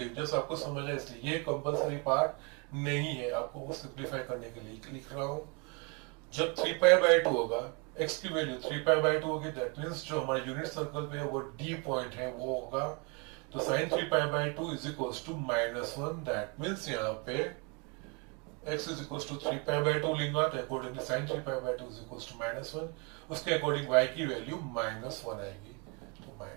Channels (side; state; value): left; quieter; 31.8 dB